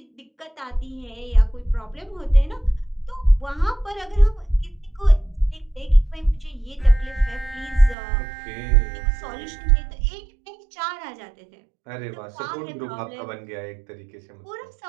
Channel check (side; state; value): left; drops out; at 8.0 s